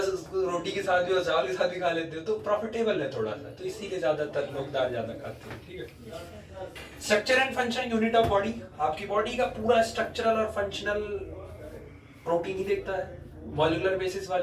रोटी के साथ भी और चावल के साथ भी खा लेते हो, तो प्रॉफिटेबल है थोड़ा सा, तो इसीलिए ज्यादातर लोग दाल ज्यादा खाते हैं। ठीक है। Structure and function unit of body, आपकी बॉडी का पूरा स्ट्रक्चरल और फंक्शनल प्रोटीन ही देखता है। मॉलिक्यूलर बेसिस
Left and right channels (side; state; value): both; identical; correlation 1.00